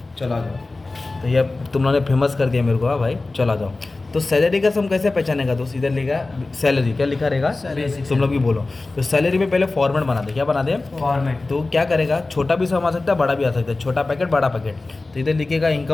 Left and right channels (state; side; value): quieter; right; 3.3 dB